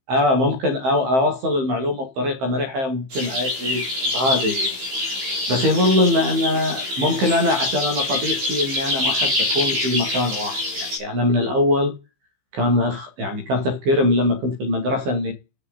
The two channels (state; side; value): late; left; 15 ms